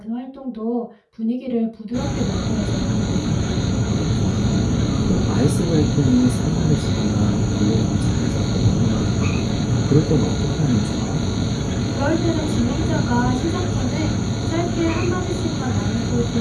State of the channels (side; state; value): both; identical; correlation 1.00